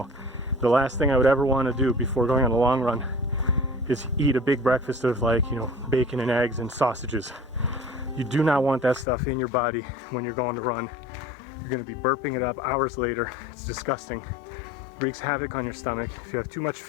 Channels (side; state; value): right; drops out; at 9.1 s